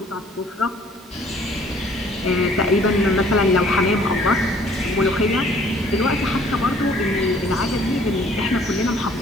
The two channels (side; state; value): both; normal; correlation 0.57